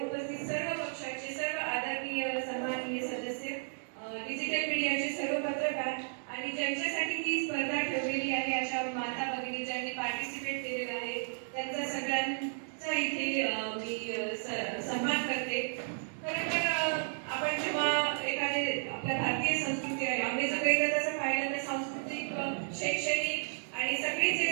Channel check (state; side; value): silent; left; digital silence